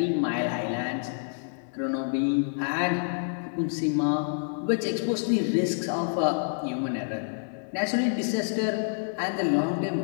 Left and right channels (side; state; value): right; silent; 60 dB below the other